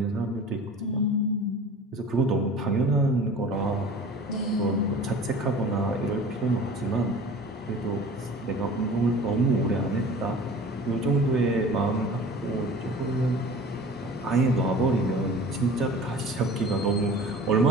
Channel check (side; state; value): both; normal; correlation 0.42